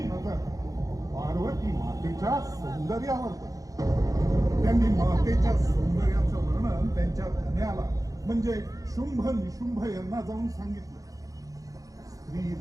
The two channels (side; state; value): left; late; 0.17 ms